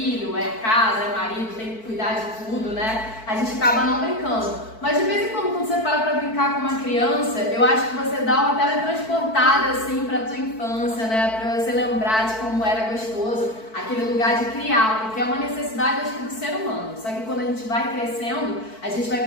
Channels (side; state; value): right; late; 4.5 ms